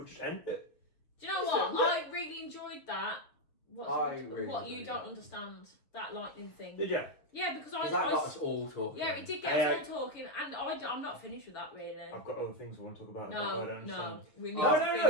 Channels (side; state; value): right; late; 6.7 ms